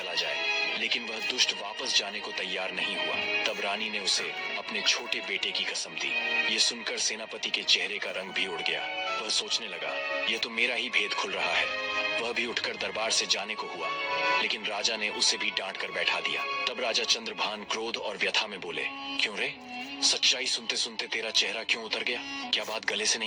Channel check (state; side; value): identical; both; correlation 1.00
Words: जाए, लेकिन वह दुष्ट वापस जाने को तैयार नहीं हुआ। तब रानी ने उसे अपने छोटे बेटे की कसम दी। ये सुनकर सेनापति के चेहरे का रंग भी उड़ गया। वह सोचने लगा, यह तो मेरा ही भेद खुल रहा है। वह भी उठकर दरबार से जाने को हुआ, लेकिन राजा ने उसे भी डांट कर बैठा दिया। तब राजा चंद्रभान क्रोध और व्यथा में बोले, क्यों रे, सच्चाई सुनते सुनते तेरा चेहरा क्यों उतर गया? क्या बात गले से